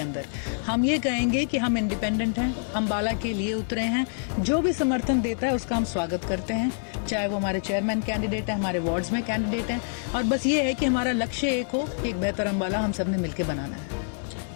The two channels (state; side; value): silent; right; 58 dB below the other